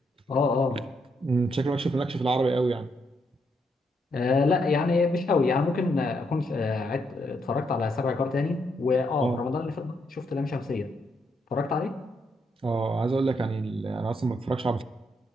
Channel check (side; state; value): both; normal; correlation 0.77